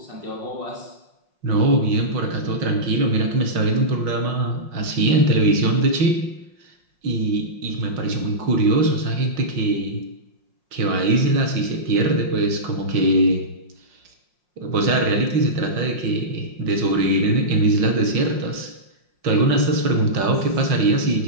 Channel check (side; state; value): left; late; 5.6 ms